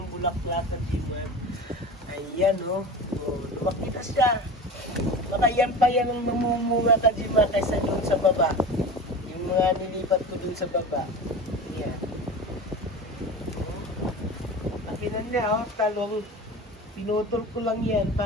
bulaklak Kajimar. Ayan oh. Oh, lumaki na siya. Baka yan pa yan ang mamumunga Kajimar kaysa doon sa baba. Mga nilipat ko dun sa baba. Yan. Pakinan niya, oh, talong. Pinutol ko lang yan.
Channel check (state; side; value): normal; both; correlation 0.32